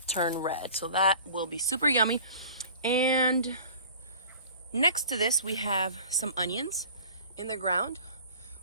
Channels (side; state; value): both; inverted; correlation -0.45